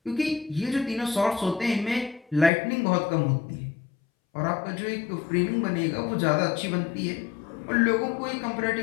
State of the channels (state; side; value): drops out; right; at 2.5 s